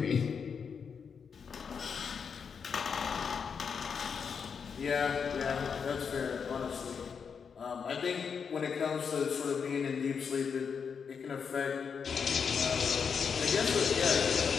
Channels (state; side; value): quieter; right; 6.3 dB